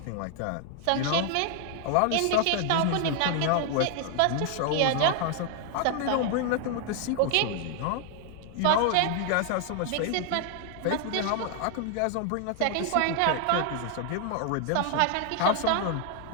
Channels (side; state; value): both; different; correlation 0.00